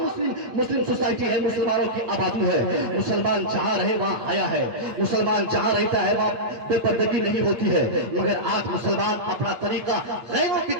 مسلم سوسائٹی ہے, مسلمانوں کی آبادی ہے. مسلمان جہاں رہے وہاں آیا ہے, مسلمان جہاں رہتا ہے وہاں بے پردگی نہیں ہوتی ہے, مگر آج مسلمان اپنا طریقہ غیروں کی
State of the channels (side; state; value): left; late; 8.8 ms